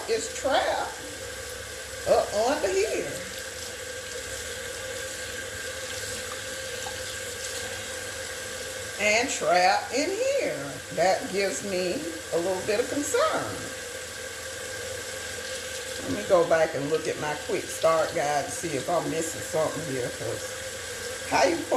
is trapped up under here. And trapped in here. That gives me a little bit of concern. Let me go back and look at my quick start guide to see if I'm missing something here. Because how you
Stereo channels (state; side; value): identical; both; correlation 1.00